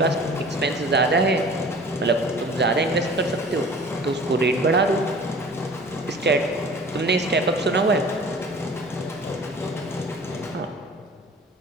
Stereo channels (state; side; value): normal; both; correlation 0.45